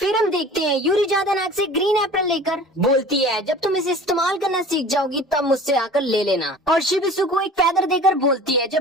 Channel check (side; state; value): both; normal; correlation 0.42